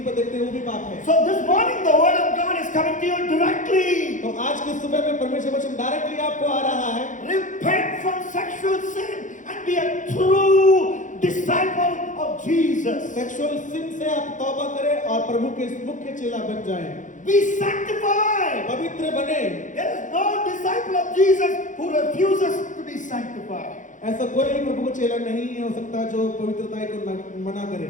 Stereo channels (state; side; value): late; right; 0.37 ms